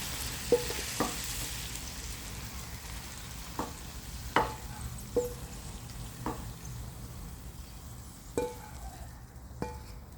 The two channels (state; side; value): identical; both; correlation 1.00